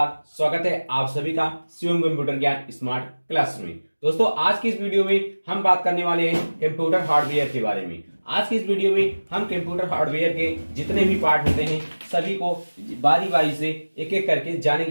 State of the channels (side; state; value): both; inverted; correlation -1.00